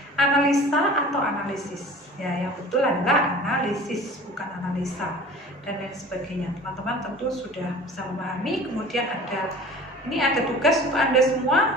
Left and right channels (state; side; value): normal; both; correlation 0.42